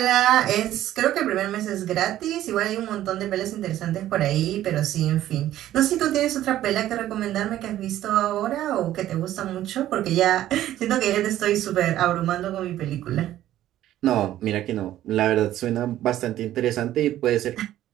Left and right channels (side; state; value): left; quieter; 13.2 dB